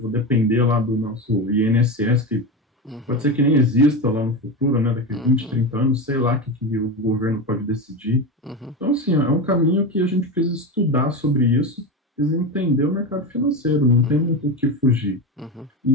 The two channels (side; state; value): both; normal; correlation 0.19